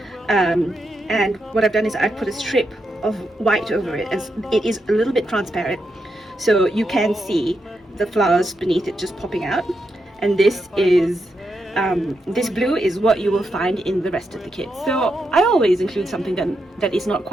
and what I've done is I've put a strip of white over it, as it is a little bit transparent, so you can see the flowers beneath it just popping out. And this is this blue is what you will find in the rest of the kit. So I always include something that is not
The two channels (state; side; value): normal; both; correlation 0.84